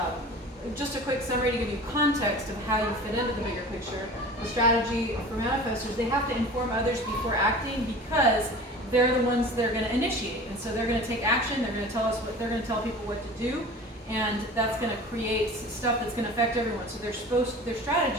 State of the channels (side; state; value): both; normal; correlation 0.39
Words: just a quick summary to give you context of how you fit into the bigger picture. The strategy for manifestors, they have to inform others before acting because they're the ones that are going to initiate. And so they're going to take action, they're going to tell people what to do, and that's going to create stuff that's going to affect everyone. So their